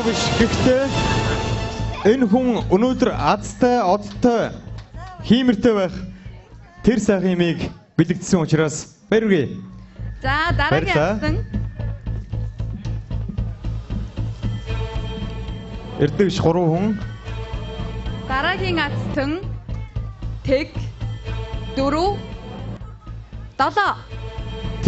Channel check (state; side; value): identical; both; correlation 1.00